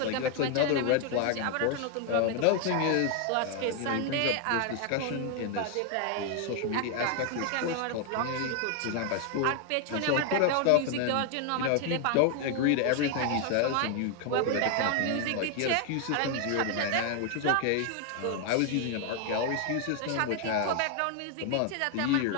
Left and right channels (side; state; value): both; different; correlation 0.00